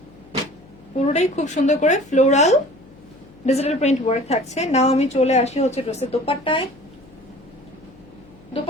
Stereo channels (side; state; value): left; noise; hum, 24 dB below the sound